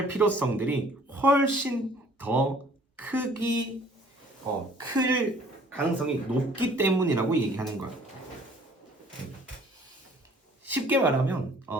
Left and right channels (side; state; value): both; normal; correlation 0.56